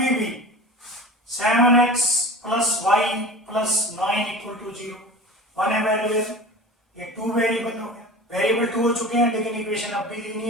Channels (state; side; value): normal; both; correlation 0.35